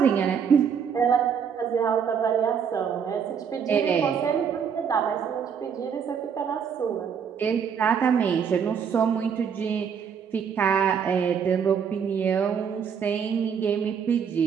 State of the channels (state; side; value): quieter; left; 7.1 dB